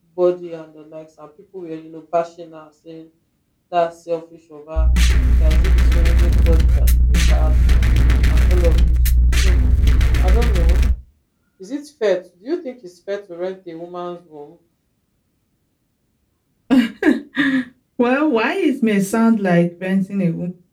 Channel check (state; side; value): identical; both; correlation 1.00